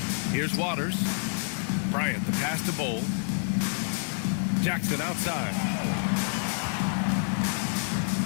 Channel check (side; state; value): right; silent; 59 dB below the other